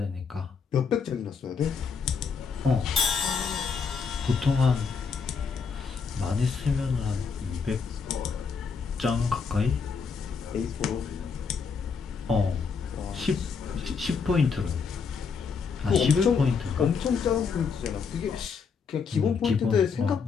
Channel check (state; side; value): quieter; right; 5.6 dB